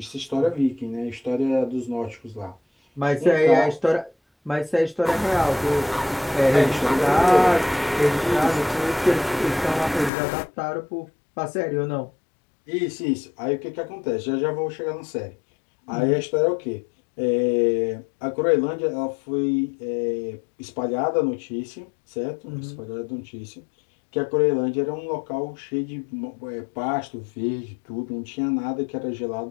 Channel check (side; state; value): right; drops out; at 10.1 s